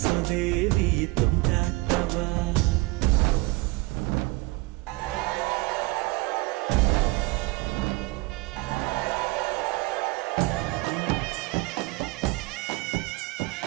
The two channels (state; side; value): quieter; left; 23.3 dB